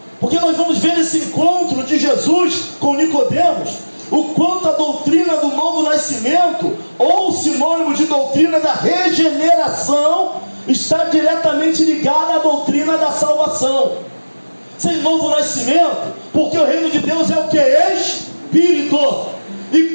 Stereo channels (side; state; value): both; inverted; correlation -1.00